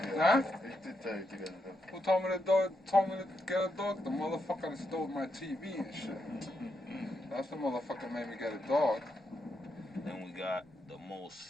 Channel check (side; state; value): both; normal; correlation 0.82